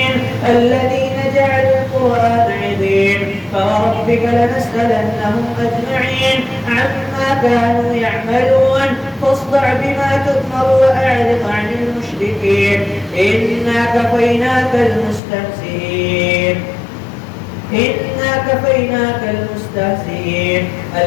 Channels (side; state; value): right; drops out; at 15.2 s